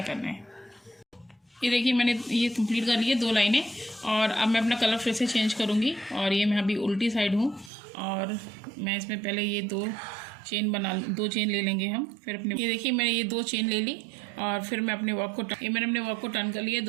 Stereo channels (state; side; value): drops out; left; at 7.7 s